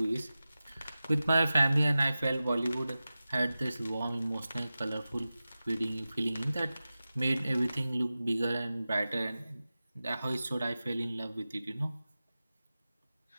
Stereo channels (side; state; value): both; inverted; correlation -0.95